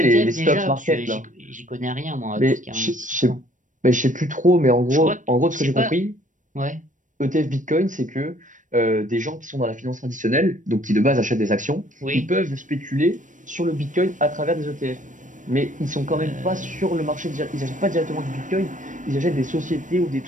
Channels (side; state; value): left; late; 0.37 ms